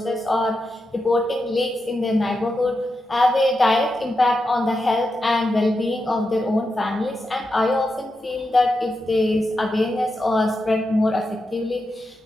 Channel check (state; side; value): normal; both; correlation 0.88